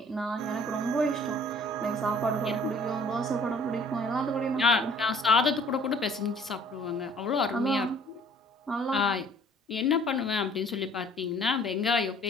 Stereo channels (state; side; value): normal; both; correlation 0.54